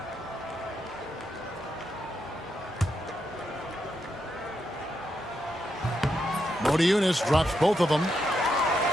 Eunice drops both of them.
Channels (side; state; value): both; normal; correlation 0.82